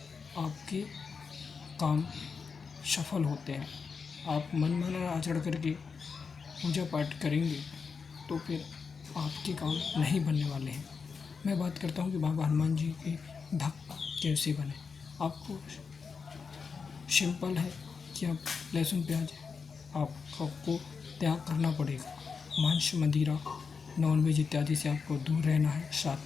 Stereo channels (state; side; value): quieter; right; 5.4 dB